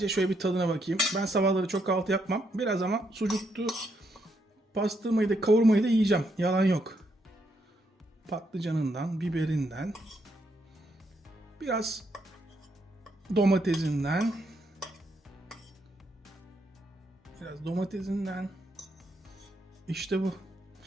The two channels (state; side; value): normal; both; correlation 0.77